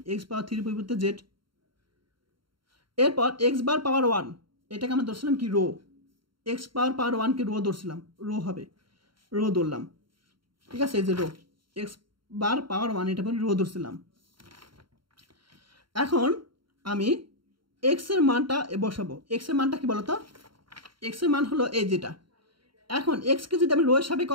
এক্স পাওয়ার 3 এর পরিবর্তে জেড। এরপর এক্স বার পাওয়ার 1 এটাকে আমরা ধরছিলাম কি রো, এক্স পাওয়ার 1কে রো ধরছিলাম, রো হবে, রো ধরলাম, ঠিক আছে। এই যে রো এক্স বার পাওয়ার 1 এটা পরে রো ধরছিলাম। এখন আমি এক্স এর মানটা বসাবো। এক্স এর মানটা কি বলতো, এক্স এর মান হলো এই যেটা। এখন এক্সকে যদি আমি রো এর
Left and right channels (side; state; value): left; late; 0.73 ms